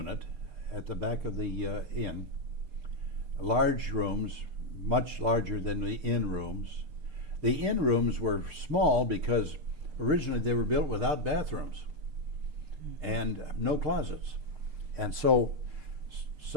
at the back of the inn. Large rooms, much larger than the inn rooms. The inn rooms were small because originally they were built without bathrooms and no closets. And so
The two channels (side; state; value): left; late; 6.6 ms